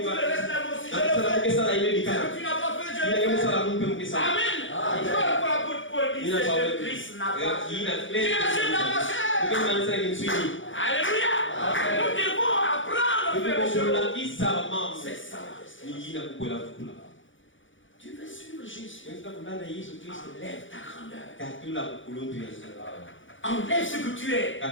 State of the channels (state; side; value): late; right; 0.56 ms